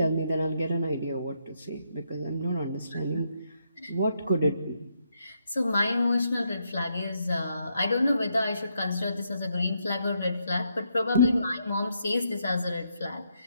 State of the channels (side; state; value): both; inverted; correlation -0.78